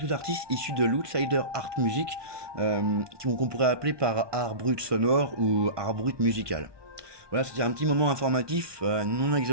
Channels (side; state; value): left; late; 1.2 ms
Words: artistes issus de l'outsider art music, qu'on pourrait appeler par art brut sonore ou art brut musical. Voilà, c'était un petit moment informatif, non